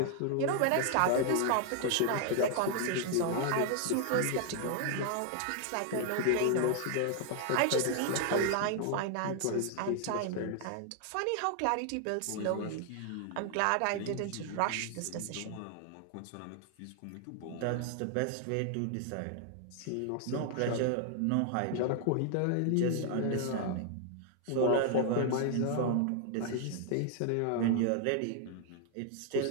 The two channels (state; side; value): different; both; correlation 0.00